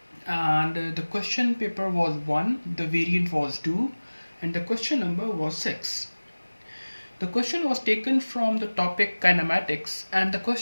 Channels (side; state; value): both; inverted; correlation -1.00